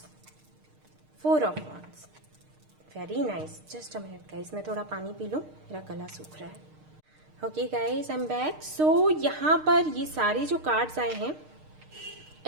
4 of Wands, very nice। Just a minute guys, मैं थोड़ा पानी पी लूँ, मेरा गला सूख रहा है। Okay guys, I am back. So यहाँ पर ये सारे जो कार्ड्स आए हैं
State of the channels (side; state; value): left; late; 6.5 ms